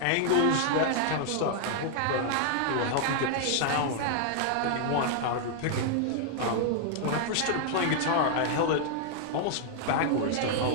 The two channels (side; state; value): both; different; correlation -0.01